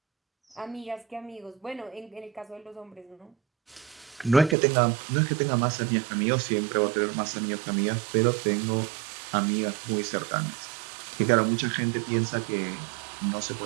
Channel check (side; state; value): left; drops out; at 4.5 s